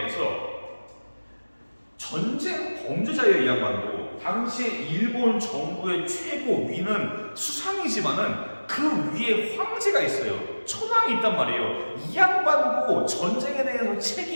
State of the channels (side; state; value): both; inverted; correlation -1.00